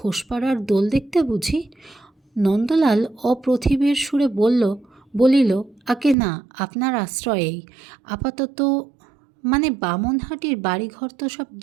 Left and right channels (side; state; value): left; drops out; at 6.2 s